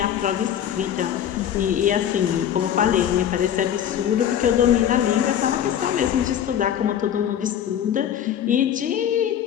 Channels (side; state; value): right; quieter; 9.9 dB